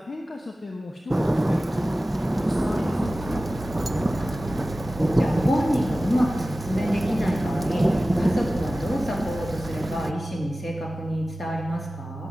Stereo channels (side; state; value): both; normal; correlation 0.96